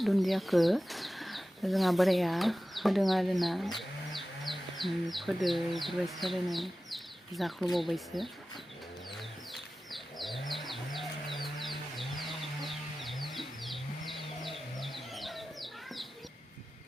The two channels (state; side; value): normal; both; correlation 0.95